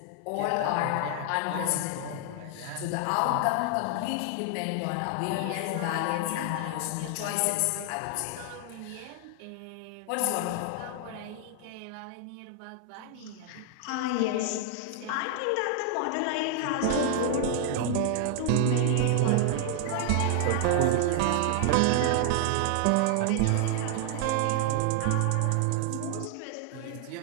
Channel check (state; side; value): different; both; correlation 0.00